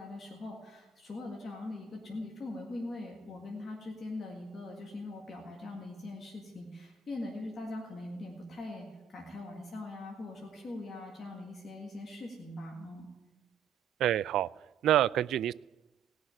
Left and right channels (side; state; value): left; quieter; 6.3 dB